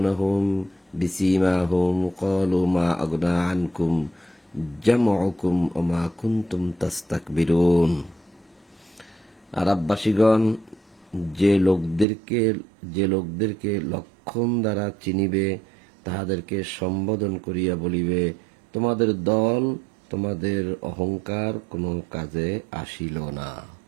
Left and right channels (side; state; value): left; drops out; at 12.1 s